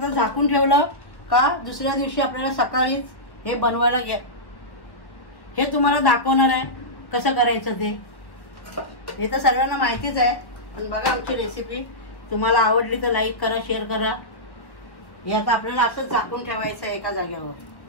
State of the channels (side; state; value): right; late; 1.1 ms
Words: झाकून ठेवलं का दुसऱ्या दिवशी आपल्याला सकाळीच हे बनवायला घ्या. हे तुम्हाला दाखवणार आहे कसं करायचं ते. हे तर सर्वांना माहितीच आहे, पण बघा आमची रेसिपी. तुम्हाला आवडली तर लाईक करा, शेअर करा. हे आता आपल्याला असंच झाकून ठेवायचं आहे एका जागेवर.